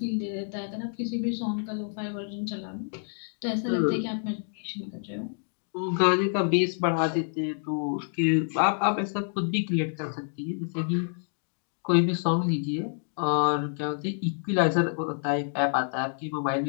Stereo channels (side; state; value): right; silent; digital silence